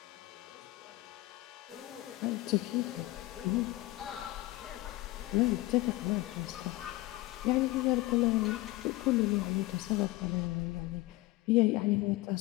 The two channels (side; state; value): right; quieter; 19.1 dB